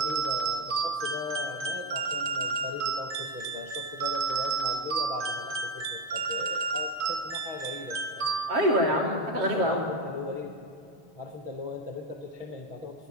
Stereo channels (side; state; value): left; late; 7.5 ms